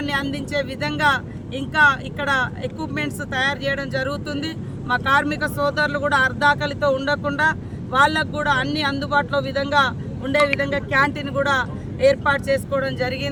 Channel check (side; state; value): both; identical; correlation 1.00